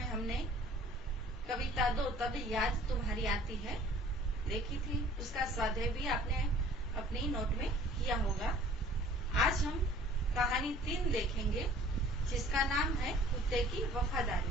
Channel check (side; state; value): both; normal; correlation 0.51